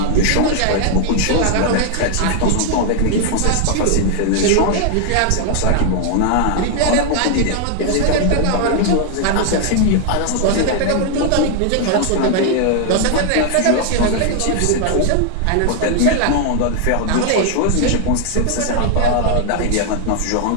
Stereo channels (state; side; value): different; both; correlation 0.00